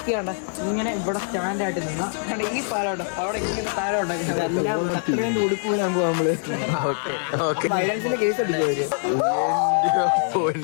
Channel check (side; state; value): right; silent; 63 dB below the other